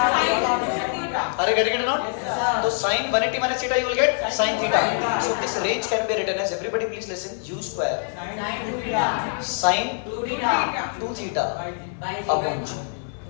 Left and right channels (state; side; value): silent; right; 62 dB below the other